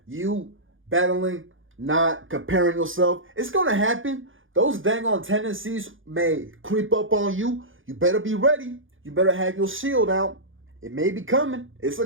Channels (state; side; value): late; left; 0.58 ms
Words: You battling, not comparing yourself. It's going to happen. Those dang on tendencies may creep up on you. You better be ready. You better have your shield out. It may be coming. It's